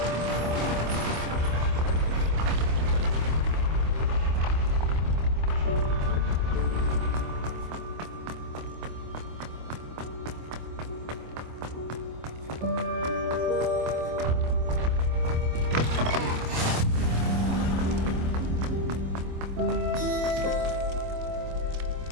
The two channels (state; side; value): late; left; 26 ms